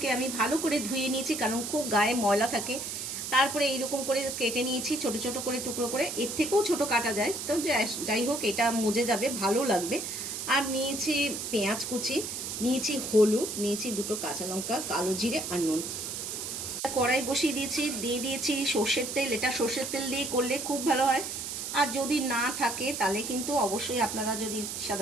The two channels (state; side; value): noise; right; hiss, 5 dB below the sound